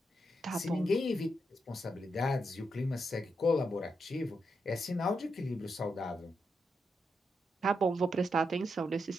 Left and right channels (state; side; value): normal; both; correlation 0.83